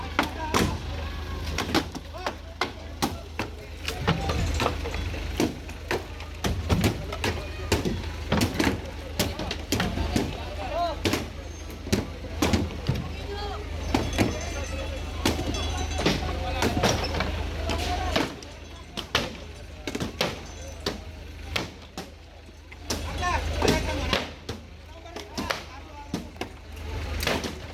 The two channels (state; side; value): identical; both; correlation 1.00